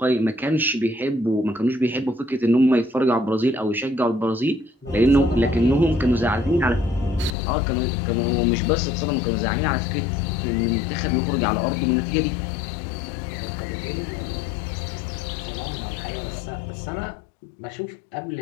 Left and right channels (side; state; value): right; drops out; at 7.4 s